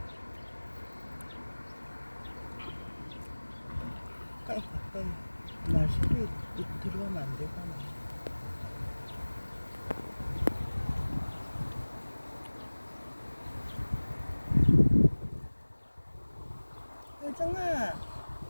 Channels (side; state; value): both; inverted; correlation -1.00